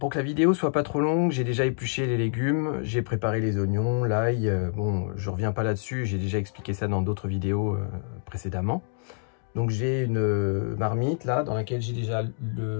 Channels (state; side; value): silent; right; digital silence